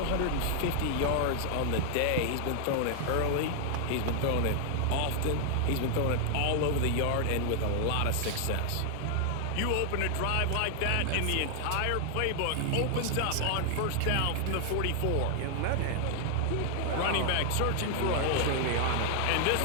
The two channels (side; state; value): both; different; correlation 0.00